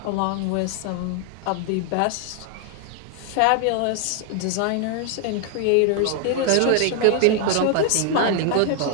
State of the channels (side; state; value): both; different; correlation 0.00